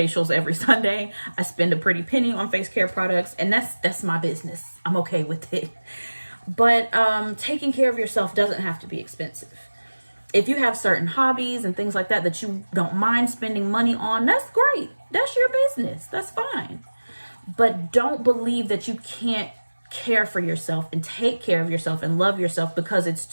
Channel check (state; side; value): inverted; both; correlation -1.00